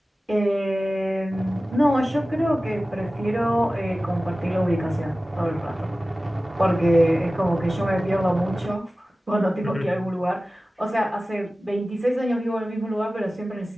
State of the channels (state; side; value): normal; both; correlation 0.96